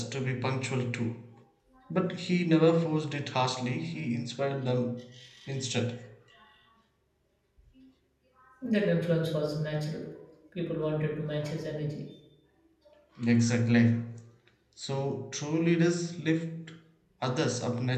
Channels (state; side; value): identical; both; correlation 1.00